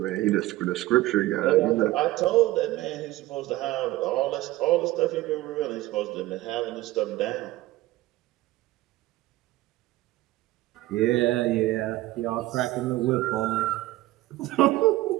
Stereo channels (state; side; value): quieter; left; 17.2 dB